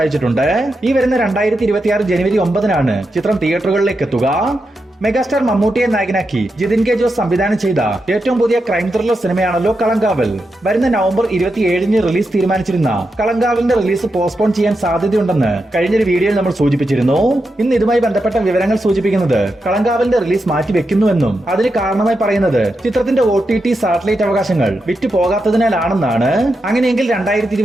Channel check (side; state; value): both; normal; correlation 0.87